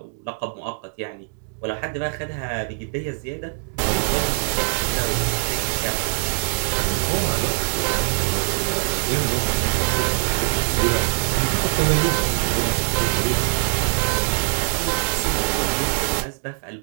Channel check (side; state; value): left; silent; digital silence